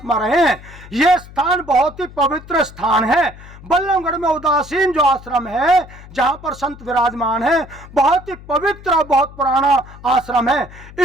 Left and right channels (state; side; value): noise; left; hum, 18 dB below the sound